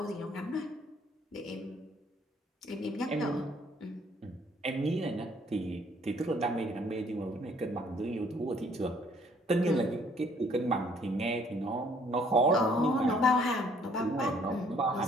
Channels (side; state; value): both; normal; correlation 0.62